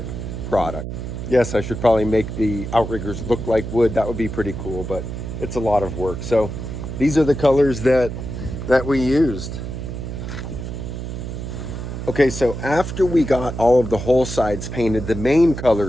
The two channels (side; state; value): right; noise; hum, 6 dB below the sound